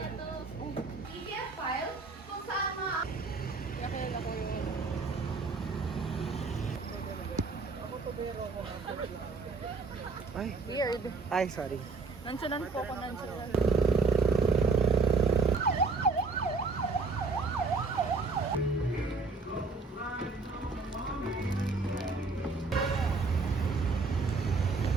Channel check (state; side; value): quieter; left; 4.1 dB